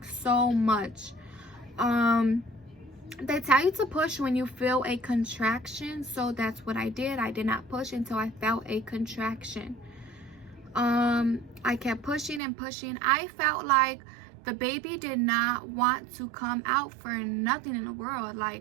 so much. They tell you to push when you feel a contraction, so that's what I did. I did not push until I felt a contraction. I kept pushing and pushing. I felt like the baby did not want to come out for nothing in the world.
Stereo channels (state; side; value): drops out; left; at 12.4 s